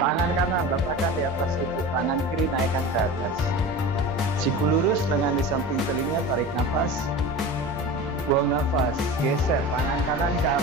kanan letakkan di atas lutut, tangan kiri naikkan ke atas. Siku lurus, lengan di samping telinga, tarik nafas. Buang nafas, geser tangan kanan ke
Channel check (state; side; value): normal; both; correlation 0.32